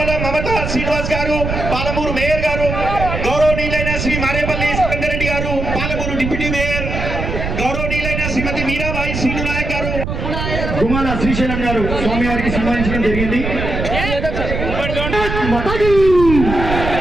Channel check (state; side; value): noise; right; rumble, 4 dB below the sound